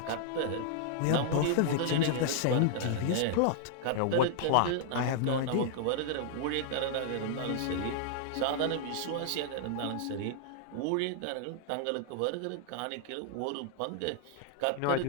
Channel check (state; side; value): different; both; correlation 0.00